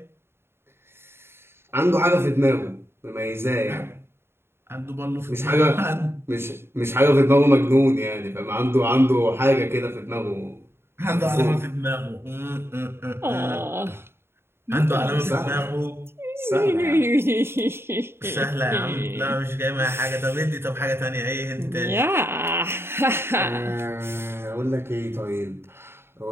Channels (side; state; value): left; late; 0.12 ms